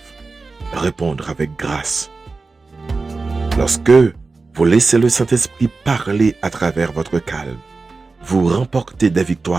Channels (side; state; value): left; quieter; 3.9 dB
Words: répondre avec grâce. Lorsque vous laissez le Saint-Esprit parler à travers votre calme, vous remportez des